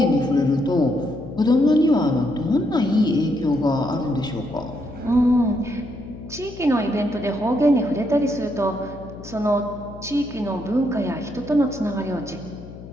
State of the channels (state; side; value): noise; left; hum, 15 dB below the sound